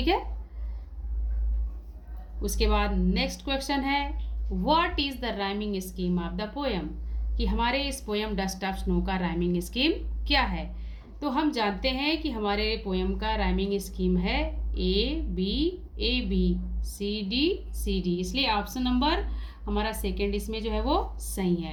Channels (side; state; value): both; identical; correlation 1.00